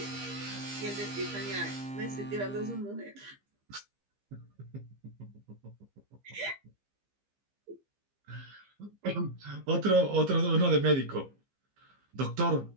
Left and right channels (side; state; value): left; late; 15 ms